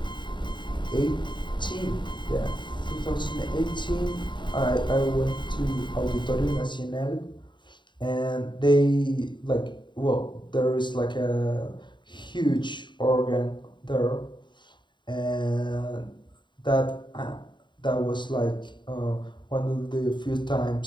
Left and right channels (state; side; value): late; right; 0.22 ms